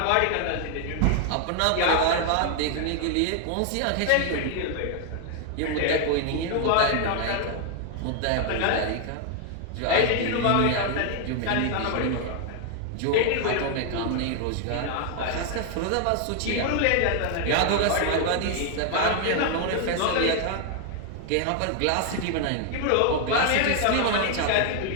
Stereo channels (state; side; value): different; both; correlation 0.00